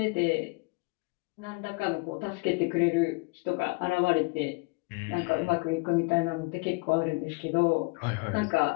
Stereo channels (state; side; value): quieter; right; 28.6 dB